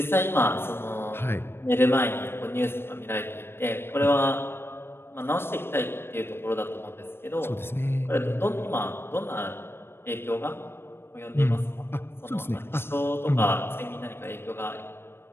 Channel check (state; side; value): late; right; 0.11 ms